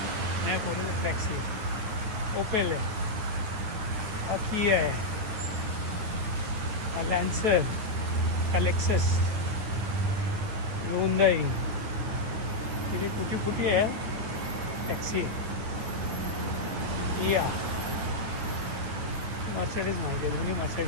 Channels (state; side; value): late; left; 9.3 ms